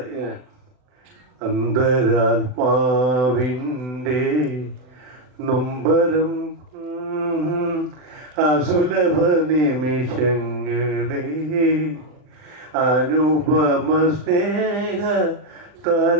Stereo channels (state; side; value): late; left; 40 ms